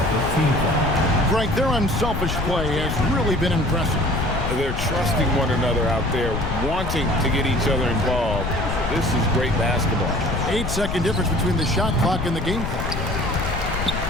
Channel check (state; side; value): noise; left; rumble, 4 dB below the sound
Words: Frank, their unselfish play has really been impressive. They're trusting one another out there, wanting to get each other involved. This is great basketball. 8-second difference between the shot clock and the game clock.